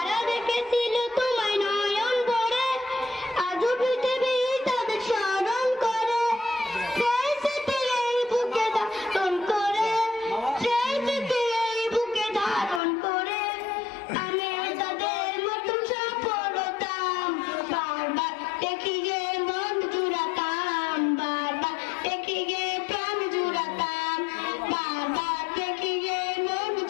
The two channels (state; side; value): drops out; right; at 12.8 s